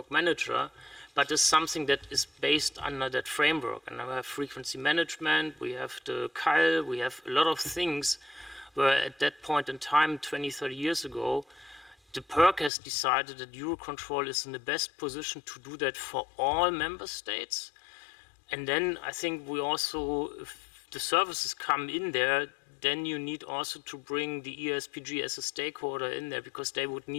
manager, but is something that is based under that framework. And now we have frequency management, we have the CAL, we have a lot of things where at that point in time, 20, 30 years ago, the PERC has decided that EUROCONTROL is in the best position to do that for all member states. And then I think we also, if the services come in there, then you need also to bring the ESPG as a stakeholder in there, because they would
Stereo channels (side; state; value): right; drops out; at 12.7 s